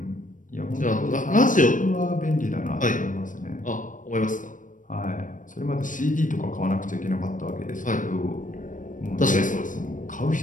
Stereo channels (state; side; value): late; right; 0.38 ms